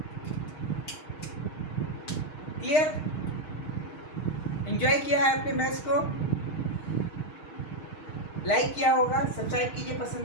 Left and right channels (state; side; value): late; right; 6.5 ms